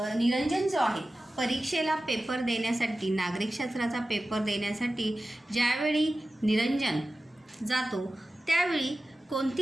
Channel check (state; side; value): normal; both; correlation 0.95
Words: जो आहे परीक्षेला पेपर देण्यासाठी, नागरिकशास्त्राचा पेपर देण्यासाठी ज्यावेळी निरंजन जातो त्यावेळी